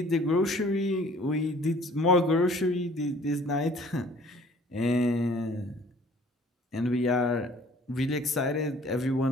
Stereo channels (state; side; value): normal; both; correlation 0.54